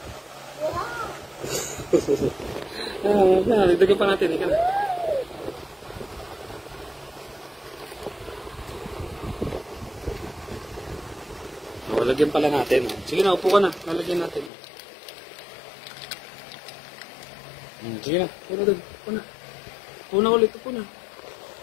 Nagdagan pa natin. Ika na. Lagyan pala natin. Sige na, upo ka na. Lalagyan natin. Sige na. Upo na doon. Upo na. Upo na ulit. Upo na.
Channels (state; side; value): drops out; right; at 14.5 s